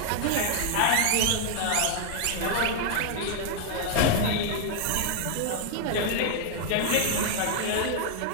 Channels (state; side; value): different; both; correlation 0.00